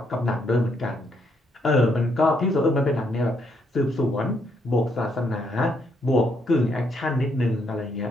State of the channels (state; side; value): normal; both; correlation 0.74